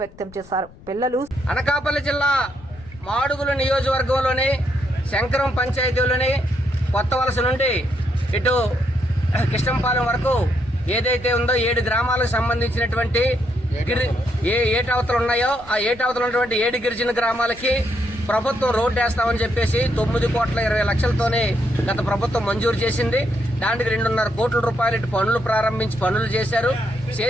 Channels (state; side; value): noise; left; rumble, 21 dB below the sound